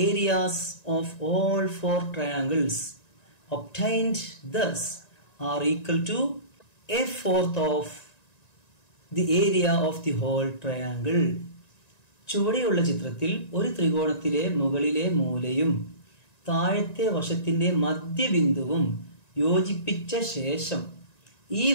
areas of all 4 triangles obtained thus are equal to a fourth of the area of the whole triangle. ചുവടെയുള്ള ചിത്രത്തിൽ ഒരു ത്രികോണത്തിലെ മുകളിലെ മൂലയും താഴത്തെ വശത്തിന്റെ മധ്യബിന്ദുവും യോജിപ്പിച്ച ശേഷം ഈ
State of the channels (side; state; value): right; late; 1.9 ms